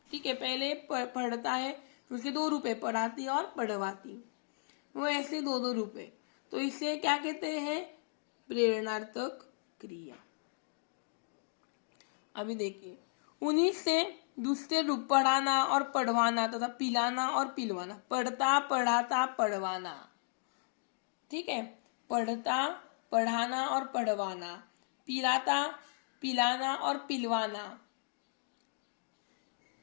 ठीक है, पहले पढ़ता है, उसके दो रूप है, पढ़ाती और पढ़वाती, वो ऐसे दो दो रूप है। तो इसे क्या कहते हैं, प्रेरणार्थक क्रिया। अभी देखिए, उन्हीं से दूसरे रूप पढ़ाना और पढ़वाना तथा पिलाना और पिलवाना। पढ़ता, पढ़ाता, पढ़वाना। ठीक है, पढ़ता, पढ़ाना और पढ़वाना, पिलाता, पिलाना और पिलवाना।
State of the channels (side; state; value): right; silent; digital silence